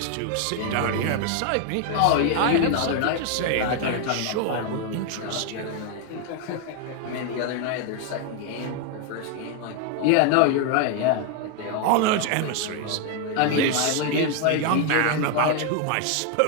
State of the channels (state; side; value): different; both; correlation 0.00